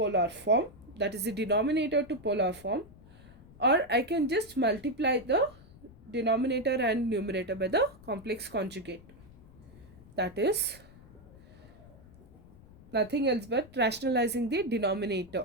form, that is the denominator to polar form, or I can just multiply the denominator and numerator by the complex conjugate. That is nothing else but rationalizing the denominator,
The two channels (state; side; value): noise; left; rumble, 22 dB below the sound